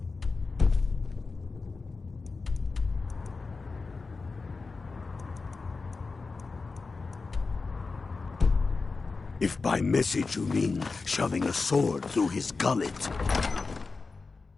If by message you mean shoving a sword through his gullet.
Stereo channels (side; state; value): right; quieter; 4.1 dB